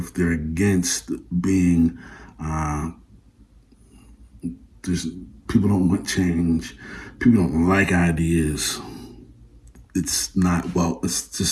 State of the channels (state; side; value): identical; both; correlation 1.00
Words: They're against being. People don't want change. People don't like ideas. It's not